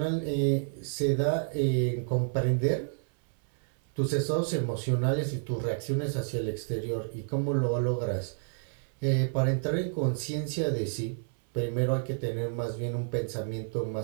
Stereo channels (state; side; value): silent; left; 58 dB below the other